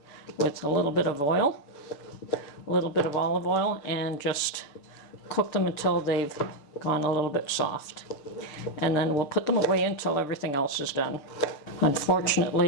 with a little bit of oil, a little bit of olive oil, and just cook them until they've gone a little bit soft. And then we'll put them away until everything else is done.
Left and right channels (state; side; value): late; right; 6.8 ms